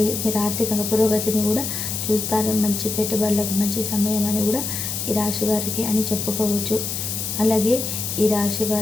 మీరు ఆర్థికంగా పురోగతిని కూడా చూస్తారు. మంచి పెట్టుబడులకు మంచి సమయం అని కూడా ఈ రాశి వారికి అని చెప్పుకోవచ్చు. అలాగే ఈ రాశి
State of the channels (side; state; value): left; noise; hiss, 3 dB below the sound